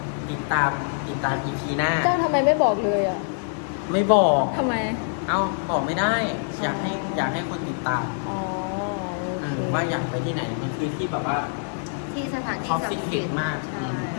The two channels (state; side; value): silent; right; digital silence